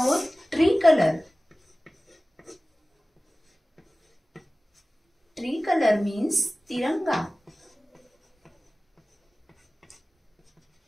tree colour. Tree colour means तिरंगा।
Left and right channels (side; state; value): both; normal; correlation 0.97